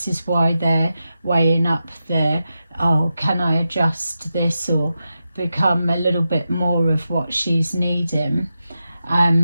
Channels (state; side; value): inverted; both; correlation -0.90